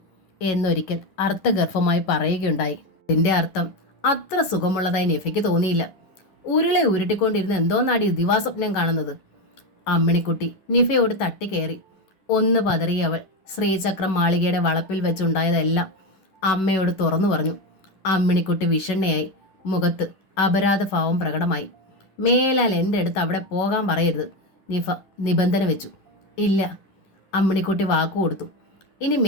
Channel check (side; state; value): right; late; 11 ms